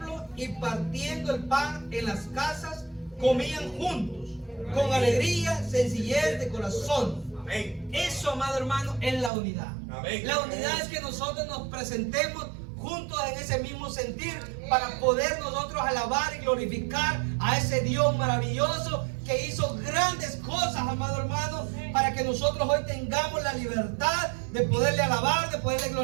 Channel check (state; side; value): drops out; left; at 9.3 s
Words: y partiendo el pan en las casas, comían juntos, con alegría, sencillez de corazón. Amén. Eso, amado hermano, es la unidad. Amén. La unidad es que nosotros nos presentemos juntos en ese mismo sentir para poder nosotros alabar y glorificar a ese Dios maravilloso que hizo grandes cosas, amado hermano, para que nosotros hoy tengamos la libertad de poderle alabar, de poderle